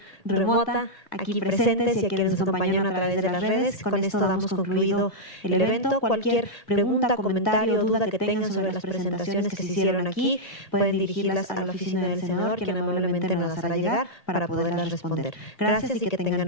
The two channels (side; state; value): right; late; 1.8 ms